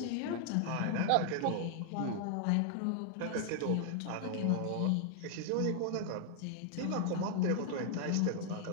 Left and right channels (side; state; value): both; different; correlation 0.00